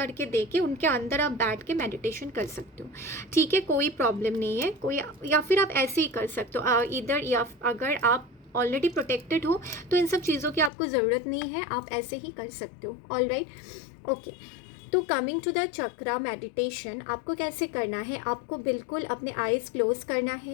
दे के उनके अंदर आप बैठ के मेडिटेशन कर सकते हो, ठीक है। कोई प्रॉब्लम नहीं है कोई, या फिर आप ऐसे ही कर सकते हो इधर, या अगर आप ऑलरेडी प्रोटेक्टेड हो तो इन सब चीज़ों की आपको ज़रूरत नहीं है, आप ऐसे ही कर सकते हो, ऑल राइट, ओके। तो coming to the chakra meditation, आपको कैसे करना है, आपको बिल्कुल अपने आईज क्लोज करना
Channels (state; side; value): drops out; right; at 10.7 s